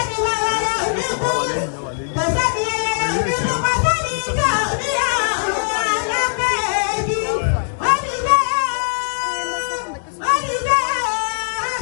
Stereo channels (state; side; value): silent; right; digital silence